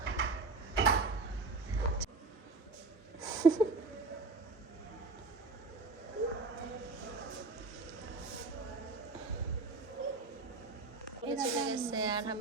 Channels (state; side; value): quieter; left; 3.7 dB